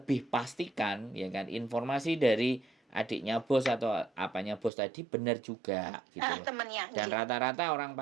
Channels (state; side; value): drops out; left; at 4.7 s